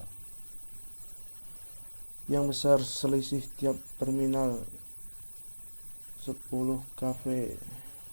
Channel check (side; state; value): both; inverted; correlation -1.00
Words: Yang besar selisih tiap terminal 10 kV.